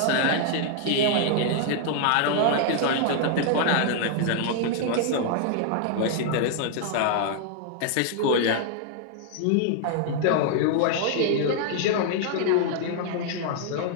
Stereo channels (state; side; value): different; both; correlation -0.01